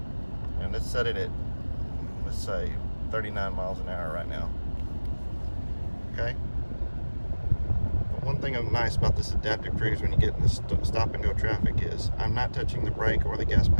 And let's set it at, let's say 39 miles an hour right now. Okay? But one thing nice about this adaptive cruise when you get in this stop and go traffic is I'm not touching the brake or the gas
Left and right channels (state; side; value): inverted; both; correlation -1.00